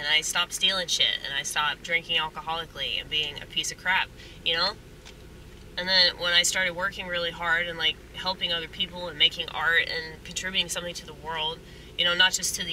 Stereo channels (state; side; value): identical; both; correlation 1.00